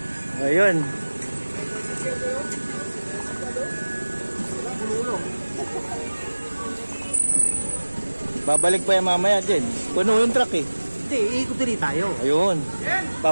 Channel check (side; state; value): both; inverted; correlation -1.00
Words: Ayun. Babalik pa yung mamaya din. Puno yung truck eh. Hindi, iikot din tayo. Ayun.